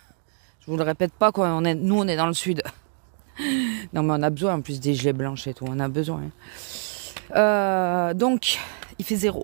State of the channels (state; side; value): silent; left; 62 dB below the other